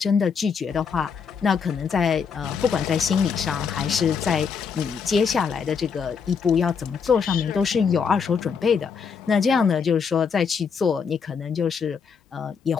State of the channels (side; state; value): right; quieter; 6.1 dB